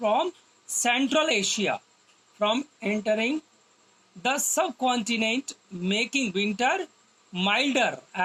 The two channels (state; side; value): identical; both; correlation 1.00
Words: Central Asia from entering the subcontinent, making winter milder